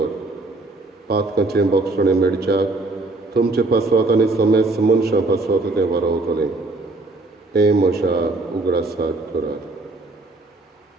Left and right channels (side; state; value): left; quieter; 3.1 dB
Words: पातकाचें बोगसणें मेडच्याक तुमचे पासवात आनी समेस्त मनशां पासवात तें वारवतलें. हें म्हज्या उगडासाक करात.